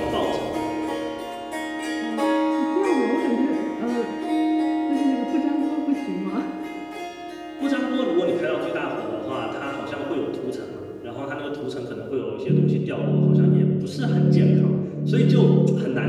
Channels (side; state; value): both; identical; correlation 1.00